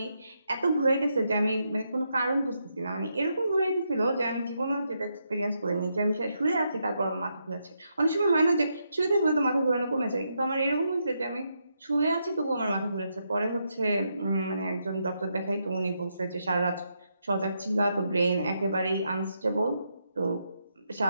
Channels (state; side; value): inverted; both; correlation -0.81